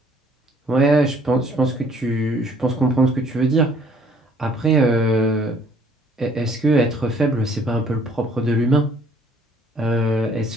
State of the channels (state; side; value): normal; both; correlation 0.60